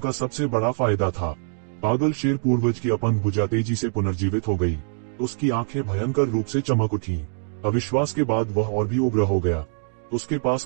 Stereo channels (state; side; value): silent; left; digital silence